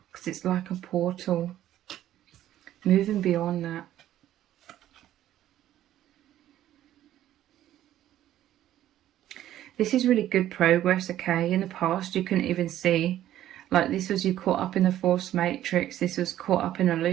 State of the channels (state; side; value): quieter; left; 12.7 dB